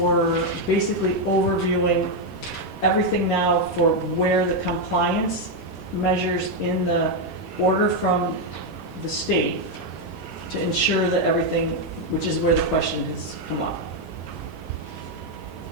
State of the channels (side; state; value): both; normal; correlation 0.03